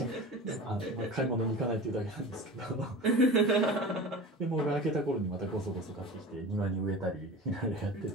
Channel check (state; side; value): normal; both; correlation 0.34